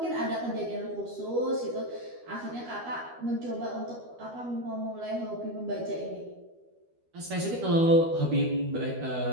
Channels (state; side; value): late; left; 12 ms